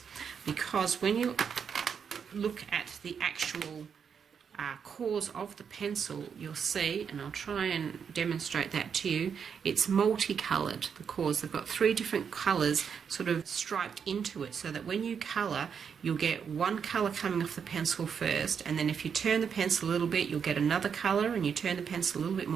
because when you look at the actual cores of the pencil, you'll see, and I'll try and demonstrate that to you, it's multicoloured. The cores, they've got three different colours sort of striped into it, so that when you colour, you'll get one colour coming off the pencil first, and then if you turn the pencil a little bit, you'll get another colour, and you turn the pencil a little bit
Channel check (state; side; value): quieter; left; 6.9 dB